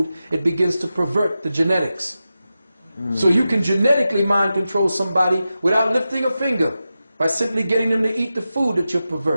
it begins to pervert the genetics. So you can genetically mind control somebody without lifting a finger, by simply getting them to eat the food that you're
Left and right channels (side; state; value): both; inverted; correlation -0.92